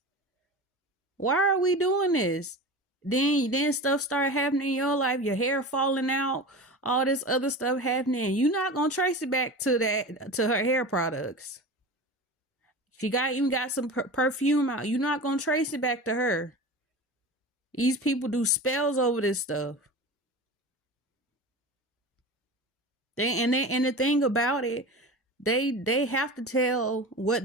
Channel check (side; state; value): both; normal; correlation 0.31